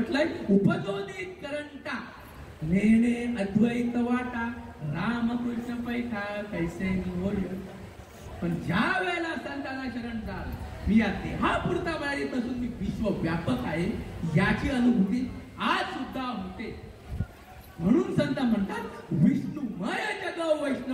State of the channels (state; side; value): identical; both; correlation 1.00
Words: उपजोनी करंटा नेणे अद्वैत वाटा, रामकृष्ण पैठा कैसे होय. पण ज्या वेळेला संतांना शरण जाल, मी या देहापुरता मर्यादित असून मी विश्वव्यापक आहे याची अनुभूती आज सुद्धा होते. म्हणून संत म्हणतात विष्णुमय जग